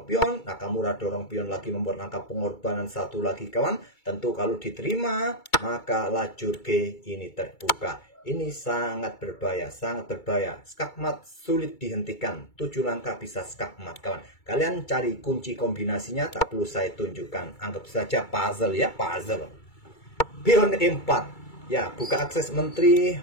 pion. Nakamura dorong pion lagi membuat langkah pengorbanan 1 lagi kawan. Tentu kalau diterima, maka lajur G ini terbuka. Ini sangat berbahaya, sangat berbahaya. Skakmat sulit dihentikan. 7 langkah bisa skakmat kawan. Kalian cari kunci kombinasinya, tak perlu saya tunjukkan. Anggap saja puzzle ya, puzzle. Pion E4. Ya, buka akses menteri,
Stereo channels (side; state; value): right; late; 2.3 ms